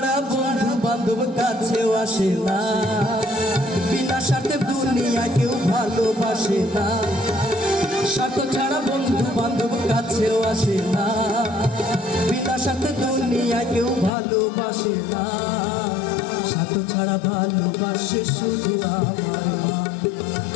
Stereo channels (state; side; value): drops out; right; at 14.1 s